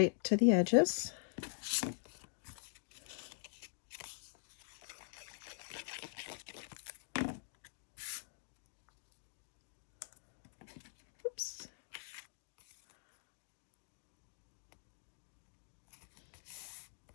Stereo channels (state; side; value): silent; right; digital silence